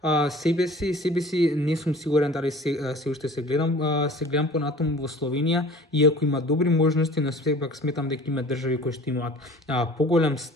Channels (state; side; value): normal; both; correlation 0.46